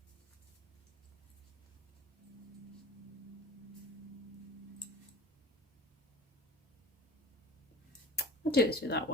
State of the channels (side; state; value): both; normal; correlation 0.37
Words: I'll do it through that